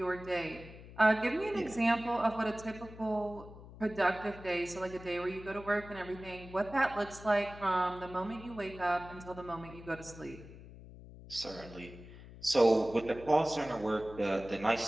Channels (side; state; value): left; noise; hum, 16 dB below the sound